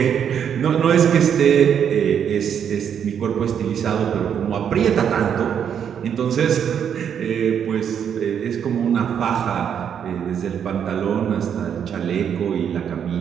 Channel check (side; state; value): left; quieter; 8.2 dB